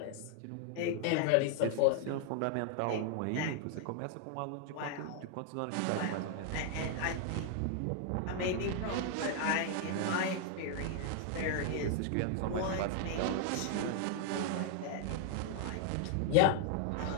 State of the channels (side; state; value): both; different; correlation 0.00